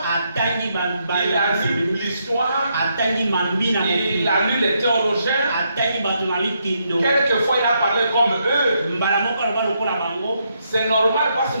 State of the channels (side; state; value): both; inverted; correlation -0.77